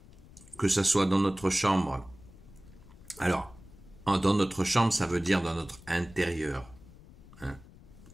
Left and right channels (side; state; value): left; noise; rumble, 21 dB below the sound